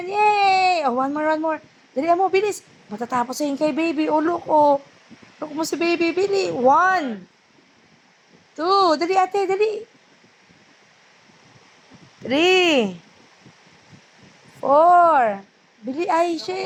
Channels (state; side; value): identical; both; correlation 1.00